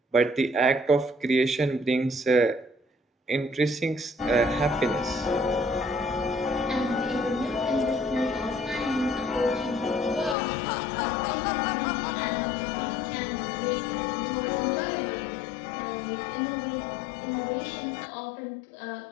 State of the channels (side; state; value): right; drops out; at 10.4 s